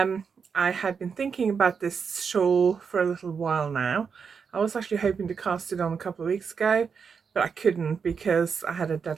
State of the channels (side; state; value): left; quieter; 6.0 dB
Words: had been thinking about this shawl for a little while now. I was actually hoping to cast it on a couple of weeks ago, but I couldn't because I had a